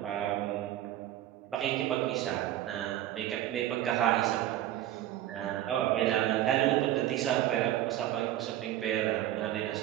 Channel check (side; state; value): left; quieter; 13.1 dB